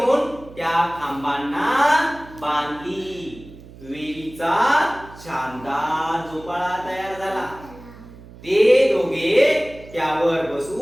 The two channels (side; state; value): right; noise; hum, 19 dB below the sound